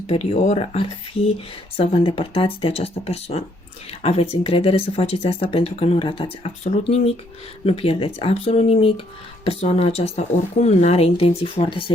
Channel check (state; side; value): normal; both; correlation 0.69